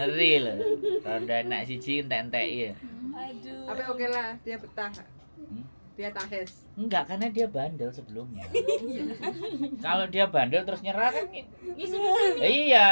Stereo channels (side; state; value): both; inverted; correlation -1.00